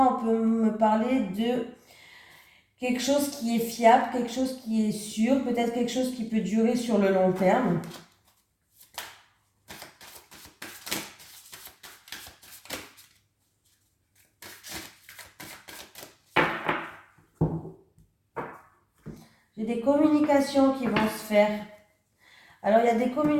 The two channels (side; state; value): both; identical; correlation 1.00